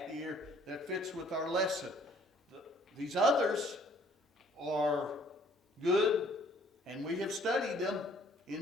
here that fits with our lesson. These others are good, and we have studied them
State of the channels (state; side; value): normal; both; correlation 0.59